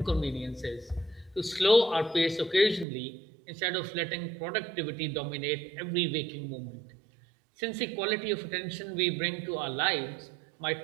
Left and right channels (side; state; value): left; drops out; at 2.9 s